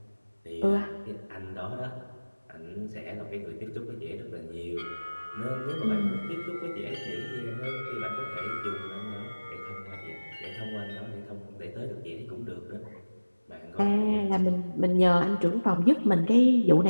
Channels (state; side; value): inverted; both; correlation -1.00